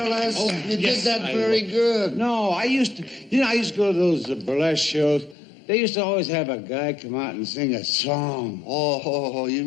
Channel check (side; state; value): right; drops out; at 5.4 s